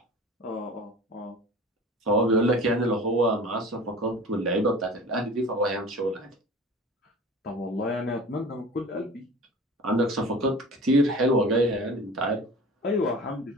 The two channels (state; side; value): normal; both; correlation 0.39